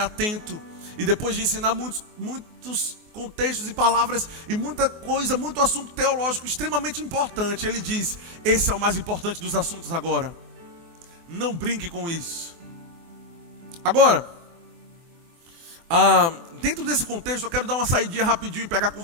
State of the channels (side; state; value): left; late; 24 ms